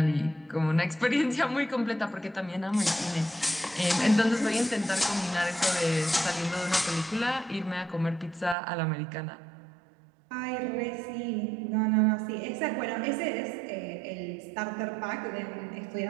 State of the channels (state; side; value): drops out; left; at 8.6 s